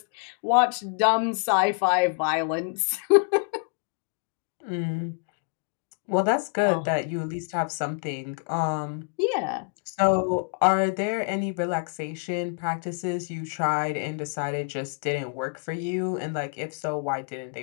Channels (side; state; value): right; quieter; 38.8 dB